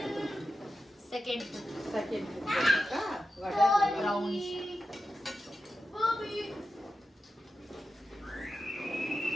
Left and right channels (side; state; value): both; normal; correlation 0.91